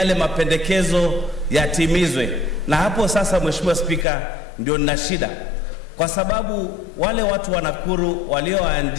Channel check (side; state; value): right; drops out; at 4.0 s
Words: mapendekezo yatimizwe. Na hapo sasa, Mheshimiwa Spika, ndio nina shida, kwa sababu wale watu wa Nakuru